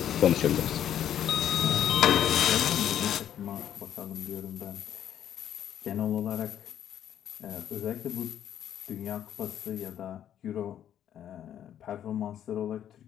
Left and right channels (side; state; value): right; quieter; 10.3 dB